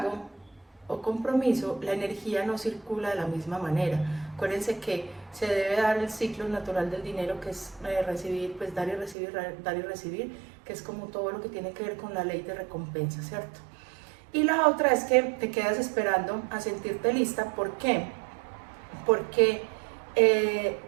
o compromiso, la energía no circula de la misma manera. Acuérdense que se debe dar el ciclo natural del dinero, que es recibir, pues dar y recibir, que es como todo lo que tiene que ver con la ley de recompensa, ¿cierto? Y la otra es que te quedas esperando a sentirte lista. ¿Por qué? Porque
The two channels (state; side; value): drops out; left; at 9.2 s